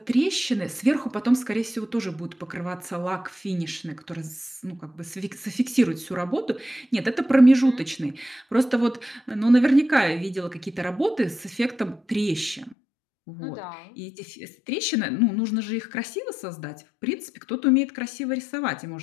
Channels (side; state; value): right; drops out; at 12.8 s